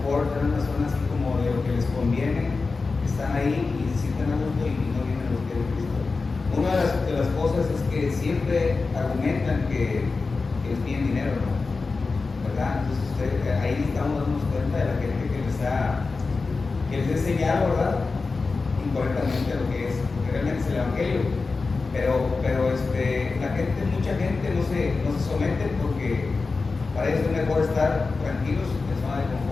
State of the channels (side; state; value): right; quieter; 4.1 dB